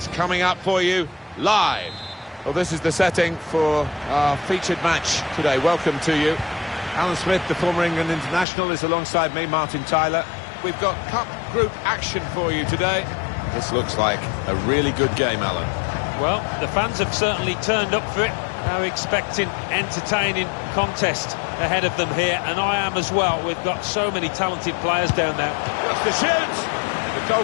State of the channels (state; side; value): drops out; right; at 8.5 s